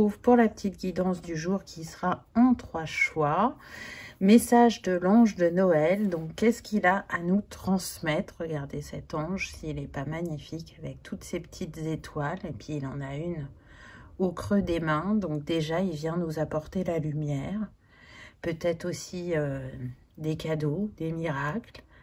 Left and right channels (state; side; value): identical; both; correlation 1.00